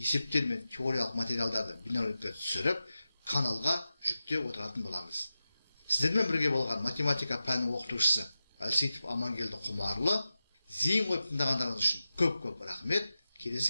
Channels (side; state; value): both; inverted; correlation -0.92